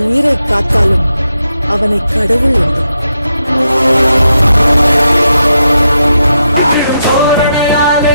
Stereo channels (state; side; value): inverted; both; correlation -0.84